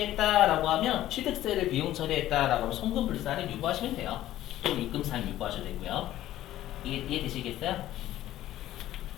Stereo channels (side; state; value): right; quieter; 13.8 dB